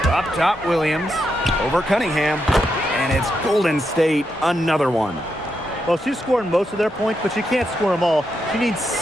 Up top, Williams. Over Cunningham. And it's Golden State, another one. Well, she's scoring most of their points, but she can't score them all. She needs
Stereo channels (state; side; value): normal; both; correlation 0.83